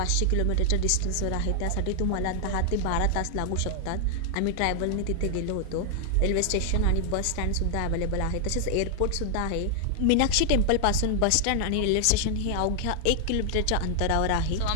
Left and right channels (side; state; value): both; different; correlation 0.00